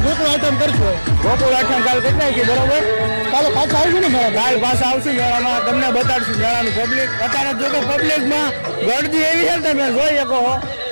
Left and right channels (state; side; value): inverted; both; correlation -1.00